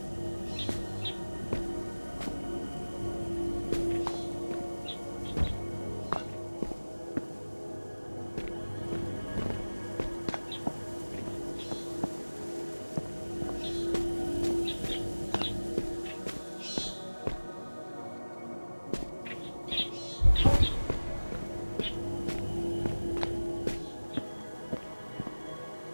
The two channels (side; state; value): both; inverted; correlation -1.00